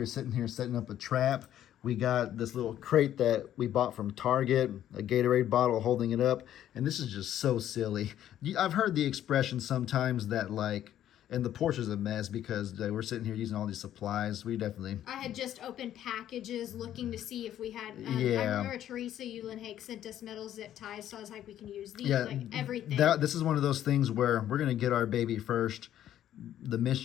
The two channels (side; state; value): right; quieter; 11.5 dB